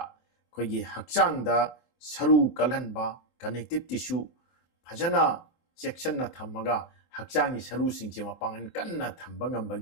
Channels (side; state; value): right; late; 24 ms